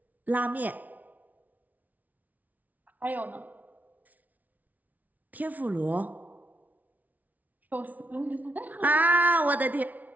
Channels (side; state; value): left; late; 0.075 ms